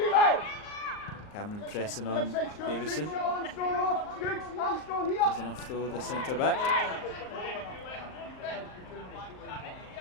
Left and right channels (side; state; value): right; late; 38 ms